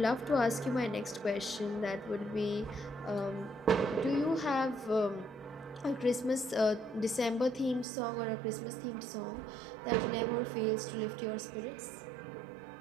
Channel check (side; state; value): left; drops out; at 7.9 s